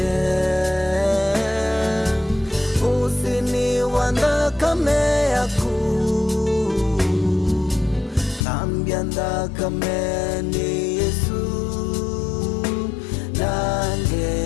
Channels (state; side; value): drops out; right; at 8.5 s